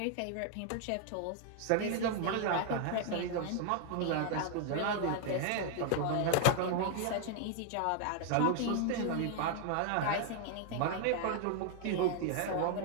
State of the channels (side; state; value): both; different; correlation 0.00